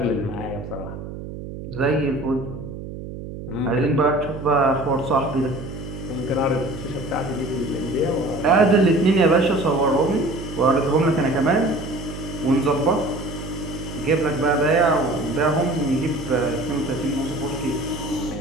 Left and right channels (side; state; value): right; noise; hum, 10 dB below the sound